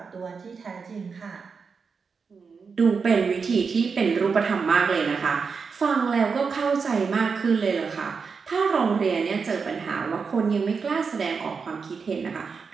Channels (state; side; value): quieter; left; 5.3 dB